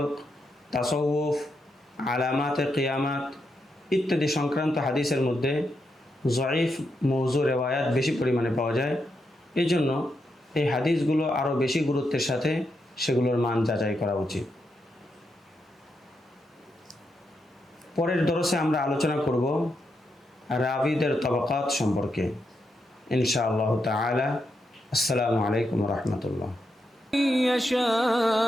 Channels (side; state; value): both; normal; correlation 0.83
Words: তাসাউফ, আলামাতে কিয়ামাত ইত্যাদি সংক্রান্ত হাদিসের মধ্যে জয়ীফ মৌজু রেওয়ায়াত বেশি পরিমাণে পাওয়া যায়। এই জন্য এই হাদিসগুলো আরও বেশি গুরুত্বের সাথে সেগুলোর মান যাচাই করা উচিত। পরের দরসে আমরা আলোচনা করব রাবিদের তবাকাত সম্পর্কে ইনশাআল্লাহ তাআলা। আসসালামু আলাইকুম ওয়া রাহমাতুল্লাহ।